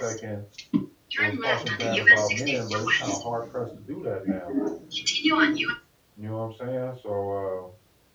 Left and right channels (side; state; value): both; identical; correlation 1.00